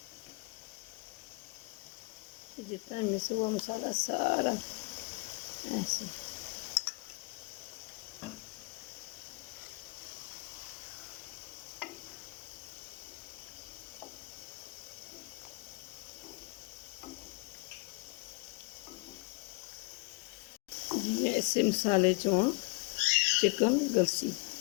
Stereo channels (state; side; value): quieter; right; 28.5 dB